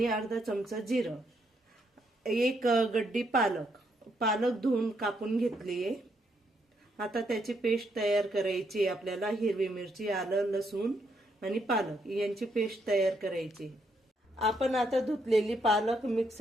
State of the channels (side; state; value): both; normal; correlation 0.75